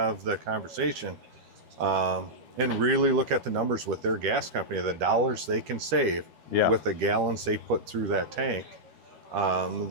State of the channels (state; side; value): late; left; 13 ms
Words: the conversation and really look at the numbers with their gas company, the dollars they can save with the gallons they put through that tank,